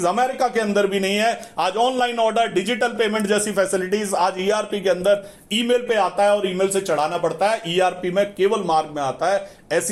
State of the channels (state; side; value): identical; both; correlation 1.00